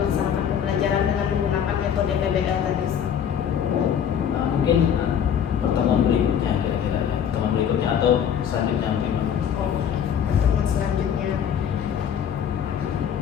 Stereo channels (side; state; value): right; quieter; 8.6 dB